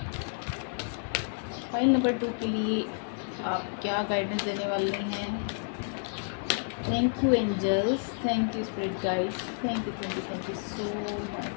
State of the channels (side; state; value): right; silent; 58 dB below the other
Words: Pile number 2 के लिए आप क्या गाइडेंस देने वाले हैं? Thank you angels, thank you spirit guides, thank you so